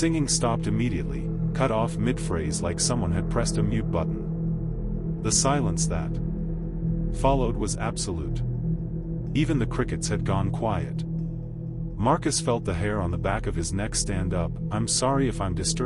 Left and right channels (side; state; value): both; identical; correlation 1.00